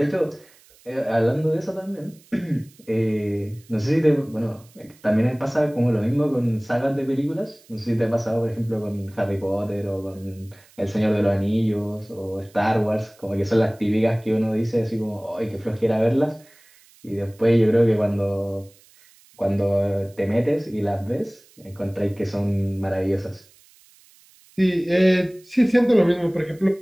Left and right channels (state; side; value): noise; right; hiss, 28 dB below the sound